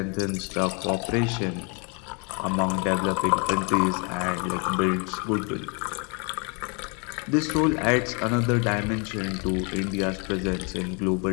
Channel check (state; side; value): quieter; right; 33.9 dB